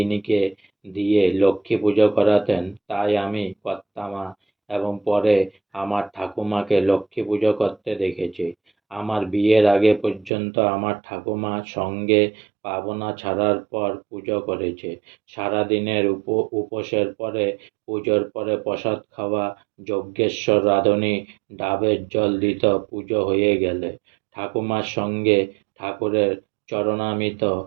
দিয়ে লক্ষ্মী পুজো করাতেন, তাই আমি কর্তামা এবং পরে আমার ঠাকুমাকে লক্ষ্মী পুজো করতে দেখেছি। আমার বিয়ের আগে পর্যন্ত আমার ঠাকুমা সঙ্গে পাবনা ছাড়ার পর পুজো করেছে। সারাদিনের উপোসের পরে, পুজোর পরে প্রসাদ খাওয়া, যজ্ঞেশ্বর রাঁধুনি ডাবের জল দিত পুজো হয়ে গেলে। ঠাকুমার সঙ্গে ঠাকুরের চরণামৃত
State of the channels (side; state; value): left; drops out; at 10.3 s